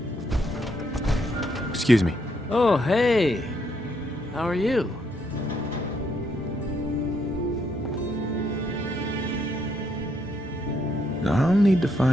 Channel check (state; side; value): normal; both; correlation 0.74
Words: Excuse me. Oh, hey. How are you? I'll need to